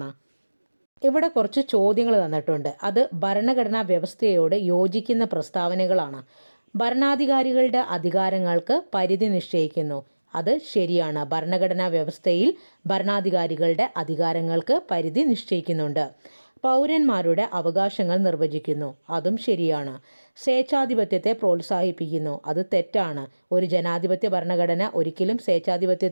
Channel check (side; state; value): both; inverted; correlation -1.00